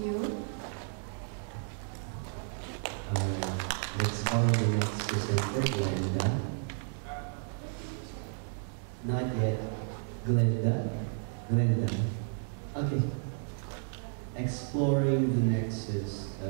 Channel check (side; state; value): left; silent; 55 dB below the other